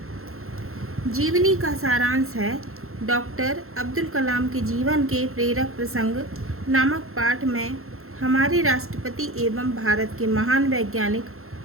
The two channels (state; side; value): late; left; 0.62 ms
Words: जीवनी का सारांश है डॉक्टर अब्दुल कलाम के जीवन के प्रेरक प्रसंग नामक पाठ में हमारे राष्ट्रपति एवं भारत के महान वैज्ञानिक